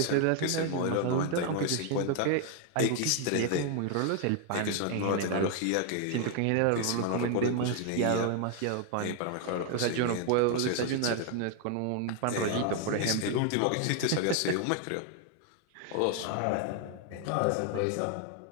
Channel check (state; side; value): different; both; correlation 0.00